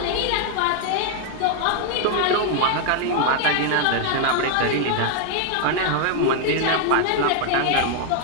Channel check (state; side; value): different; both; correlation 0.00